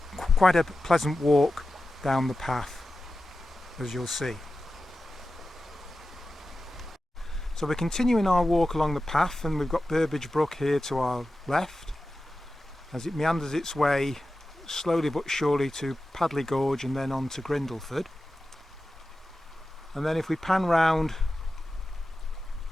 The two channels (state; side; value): normal; both; correlation 0.93